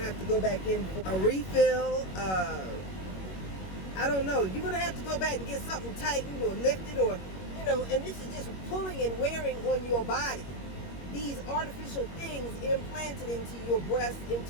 have to go back in for a refill. I don't know. You're going to have to go back and get something tightened or lifted or, and this is just pulling and wearing on your body. These artificial things implanted into your breast,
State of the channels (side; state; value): right; late; 21 ms